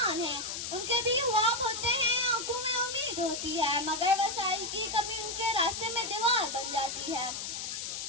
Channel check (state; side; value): noise; left; hiss, 5 dB below the sound